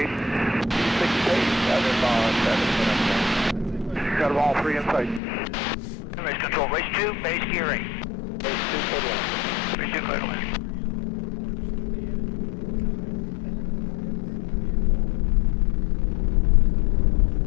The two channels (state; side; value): drops out; right; at 5.2 s